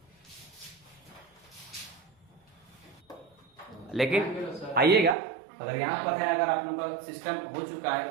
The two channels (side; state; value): left; drops out; at 5.2 s